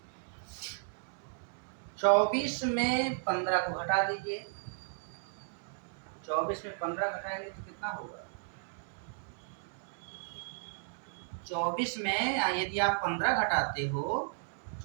24 में 15 को घटा दीजिए। 24 में 15 घटाएंगे तो कितना होगा? 24 में यदि आप 15 घटाते हो,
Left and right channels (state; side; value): silent; left; digital silence